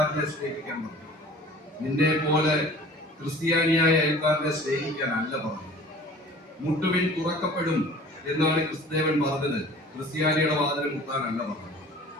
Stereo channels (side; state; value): both; normal; correlation 0.46